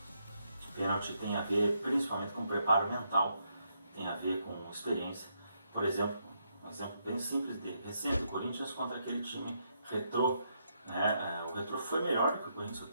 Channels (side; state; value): both; inverted; correlation -0.78